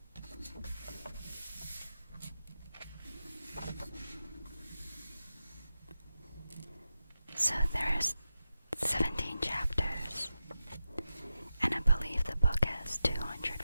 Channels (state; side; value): inverted; both; correlation -0.91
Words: So there's 17 chapters, and I believe the book has